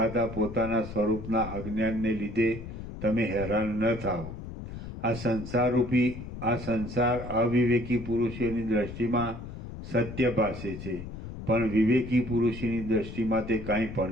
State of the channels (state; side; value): noise; left; rumble, 10 dB below the sound